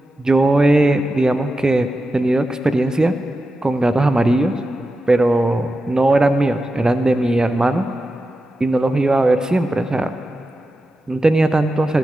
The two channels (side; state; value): both; normal; correlation 0.91